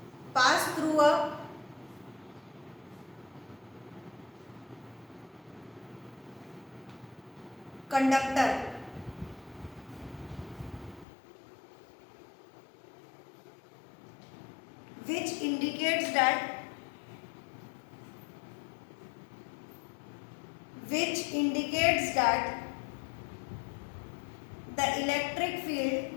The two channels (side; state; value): right; drops out; at 11.1 s